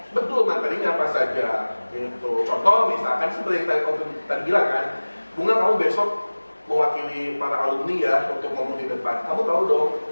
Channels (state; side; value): inverted; both; correlation -1.00